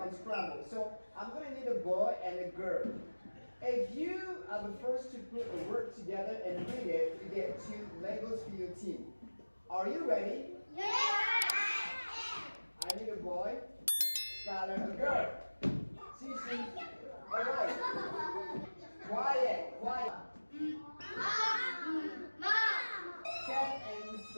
So I'm going to need a boy and a girl. If you are the first to put a word together and read it, you get 2 Legos for your team. Are you ready? Yeah! I need a boy, Skylar, a girl. Cece, alright. Quiet. Cat and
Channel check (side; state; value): both; inverted; correlation -1.00